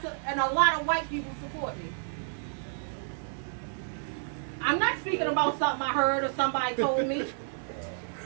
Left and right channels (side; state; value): left; silent; digital silence